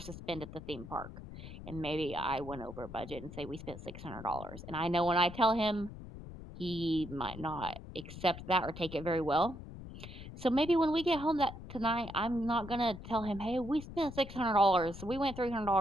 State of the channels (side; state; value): left; noise; rumble, 12 dB below the sound